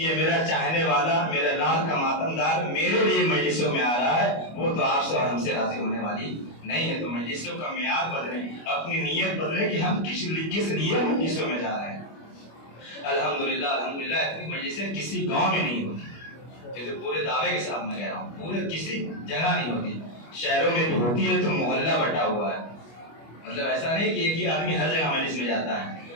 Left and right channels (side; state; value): right; late; 25 ms